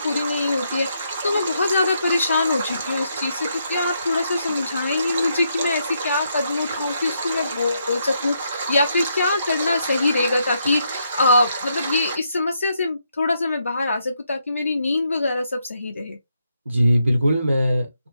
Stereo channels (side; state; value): both; inverted; correlation -0.78